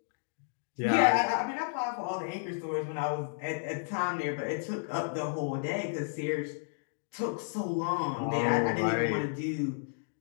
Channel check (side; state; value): right; silent; digital silence